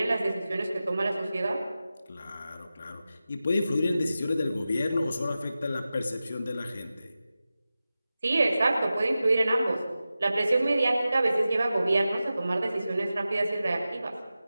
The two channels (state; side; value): inverted; both; correlation -0.94